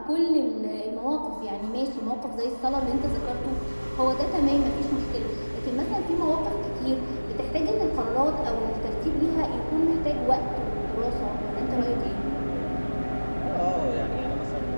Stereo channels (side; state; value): both; inverted; correlation -1.00